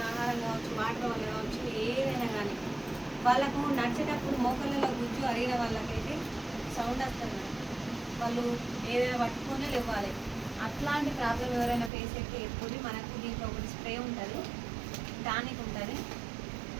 ఆహారం కావచ్చు, వాటర్ వల్ల కావచ్చు, ఏదైనా కానీ వాళ్ళకు నడిచేటప్పుడు మోకాళ్ళలో గుజ్జు అరిగిన వాళ్ళకైతే సౌండ్ వస్తుంది. వాళ్ళు ఏదైనా పట్టుకొని లేవాలి. అట్లాంటి ప్రాబ్లం ఎవరైనా ఫేస్ అయితే ఎప్పుడు మనకు దీంట్లో ఒకటి స్ప్రే ఉంటుంది, టానిక్ ఉంటుంది,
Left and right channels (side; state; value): left; drops out; at 11.9 s